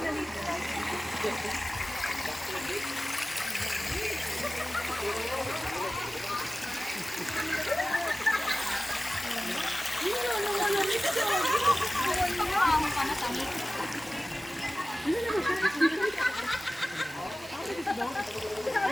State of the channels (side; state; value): both; normal; correlation 0.97